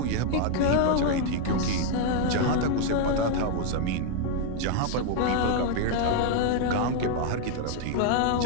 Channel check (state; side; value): different; both; correlation 0.00